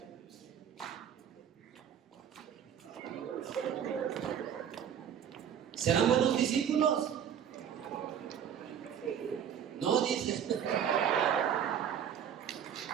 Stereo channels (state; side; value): quieter; left; 8.8 dB